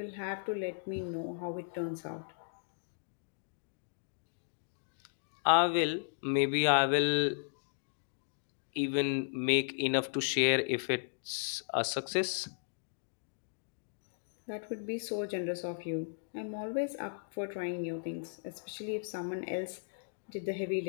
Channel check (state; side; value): silent; right; digital silence